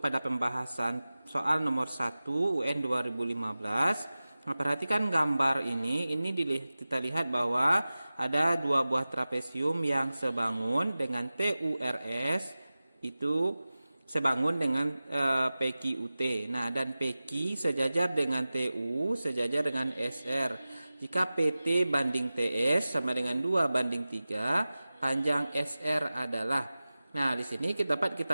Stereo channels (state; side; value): inverted; both; correlation -0.97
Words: pembahasan soal nomor 1 UN 2015. Nah, perhatikan gambar ini kita lihat bahwa ada dua buah trapesium yang sebangun dengan TURS itu sebangun dengan PQUT. Nah, dan PQ sejajar dengan TU sejajar dengan SR. Jika PT banding TS sama dengan 2:3, panjang SR adalah. Nah, di sini dapat